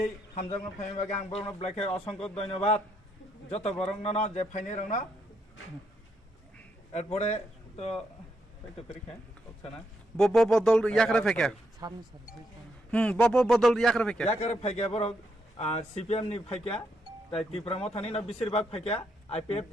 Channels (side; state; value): both; normal; correlation 0.78